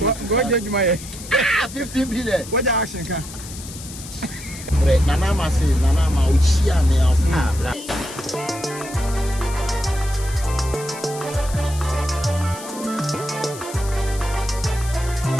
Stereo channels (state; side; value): noise; left; hiss, 13 dB below the sound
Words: judge my 15 billion. What the action can? Nana say, Nana, we see a nails. Because